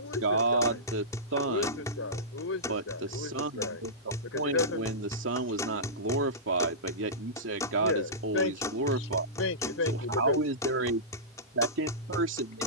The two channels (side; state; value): both; normal; correlation -0.18